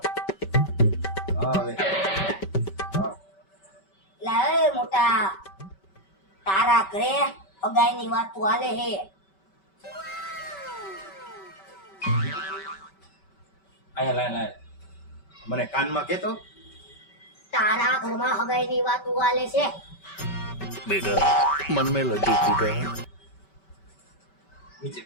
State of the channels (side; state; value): right; late; 5.2 ms